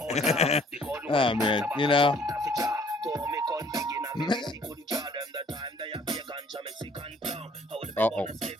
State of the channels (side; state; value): both; normal; correlation 0.58